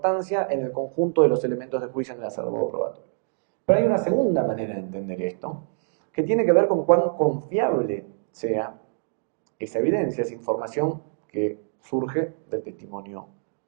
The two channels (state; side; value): silent; left; digital silence